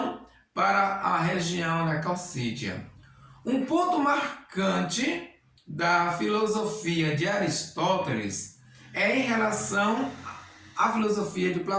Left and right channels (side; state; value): both; identical; correlation 1.00